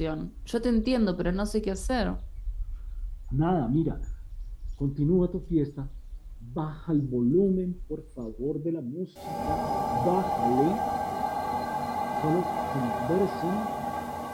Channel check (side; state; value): both; identical; correlation 1.00